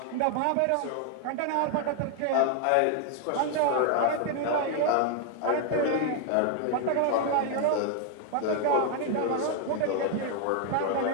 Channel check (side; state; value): both; different; correlation 0.00